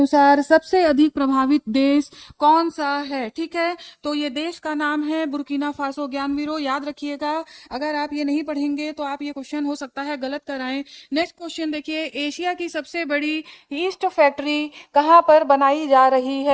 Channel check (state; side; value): identical; both; correlation 1.00